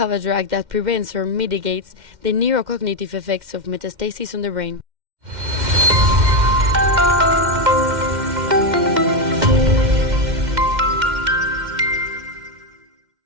a drug that prevents or mitigates the neurocognitive effects of metastasis on the brain.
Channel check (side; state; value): left; late; 2.1 ms